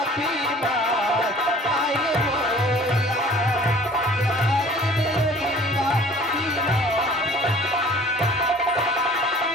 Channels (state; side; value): normal; both; correlation 0.49